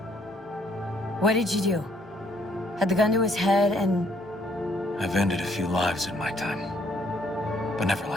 What did you do? Had the gun to his head and... I've ended a few lives in my time. But never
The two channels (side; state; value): both; normal; correlation 0.66